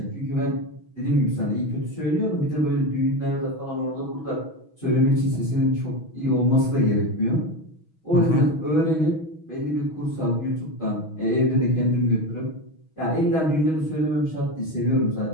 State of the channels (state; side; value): late; right; 6.2 ms